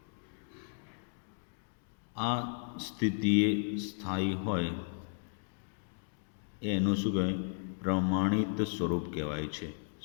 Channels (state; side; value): silent; right; digital silence